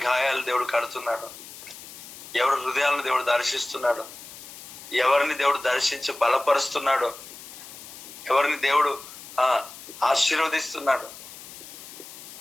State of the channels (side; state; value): left; noise; hiss, 15 dB below the sound